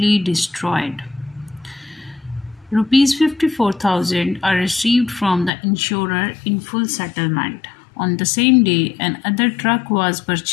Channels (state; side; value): drops out; right; at 5.5 s